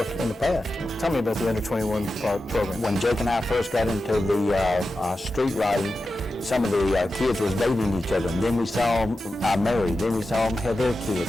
in the past. Tell me about the under 21 program. When Jake and I first got into the street riding, some of the kids was dating each other, and then we saw them married, then we saw them have their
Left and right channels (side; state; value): both; normal; correlation 0.92